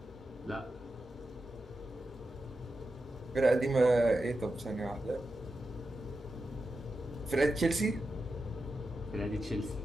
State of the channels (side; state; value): both; normal; correlation 0.90